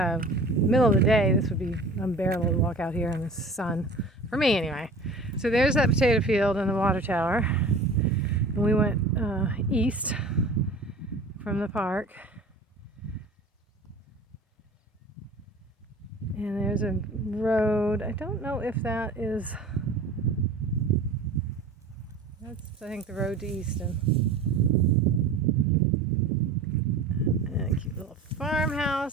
Middle of the day, this would be unbearable to walk out here in the sun, for me anyway. So there's that potato field and the water tower, and we went east from the park. And there's a road. I don't know if that's I think the road to Easton. And a cute little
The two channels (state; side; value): quieter; left; 3.0 dB